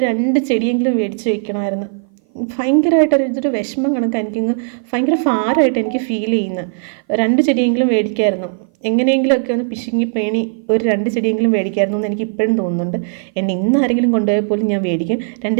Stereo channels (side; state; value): left; silent; 58 dB below the other